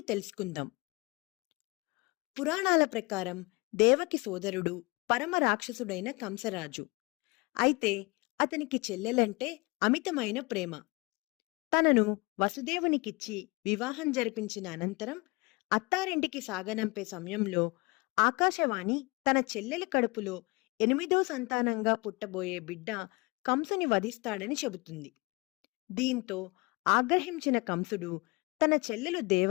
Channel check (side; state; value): right; quieter; 26.3 dB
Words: తెలుసుకుందాం. పురాణాల ప్రకారం దేవకి సోదరుడు పరమ రాక్షసుడైన కంసరాజు. అయితే అతనికి చెల్లెలంటే అమితమైన ప్రేమ. తనను వసుదేవునికిచ్చి వివాహం జరిపించిన అనంతరం అత్తారింటికి సాగనంపే సమయంలో ఆకాశవాణి తన చెల్లెలి కడుపులో 8వ సంతానంగా పుట్టబోయే బిడ్డ కంసుని వధిస్తాడని చెబుతుంది. దీంతో ఆగ్రహించిన కంసుడు తన చెల్లెలు